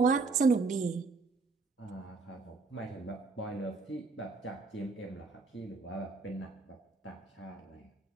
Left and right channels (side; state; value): left; quieter; 4.1 dB